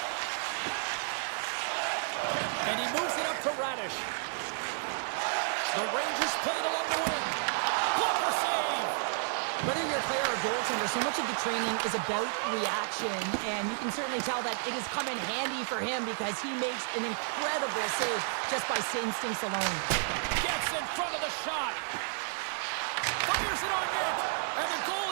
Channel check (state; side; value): silent; left; digital silence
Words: And he moves it up to Radish. The Rangers play it along the wing. Blocker save! Whether you're a player or goaltender, so much of the training is about reaction, and you can certainly tell that it has come in handy for him because he makes an incredible save just by instincts alone. Gets in front of the shot. Fires it on net. And the